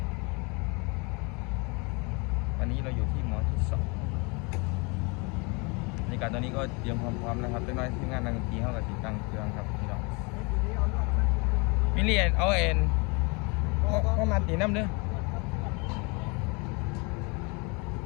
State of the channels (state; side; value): quieter; right; 30.2 dB